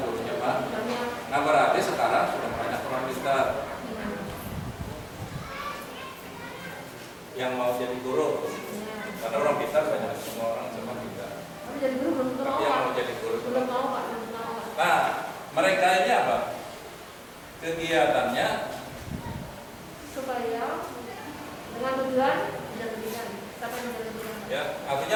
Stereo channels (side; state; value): both; identical; correlation 1.00